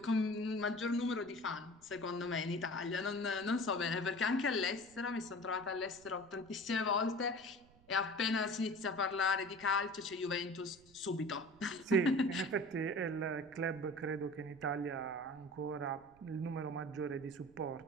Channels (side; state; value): right; noise; rumble, 26 dB below the sound